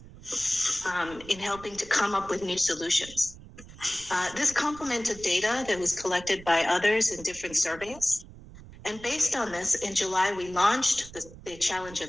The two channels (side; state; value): right; noise; rumble, 18 dB below the sound